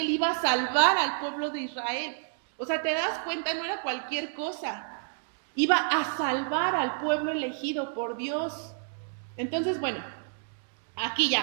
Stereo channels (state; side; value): silent; left; digital silence